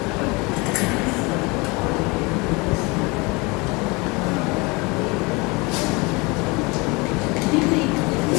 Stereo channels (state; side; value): quieter; right; 26.6 dB